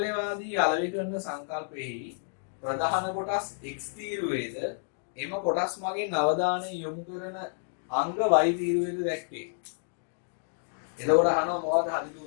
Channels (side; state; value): right; silent; digital silence